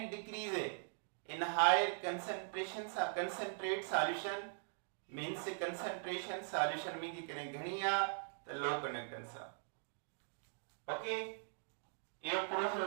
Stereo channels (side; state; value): left; silent; digital silence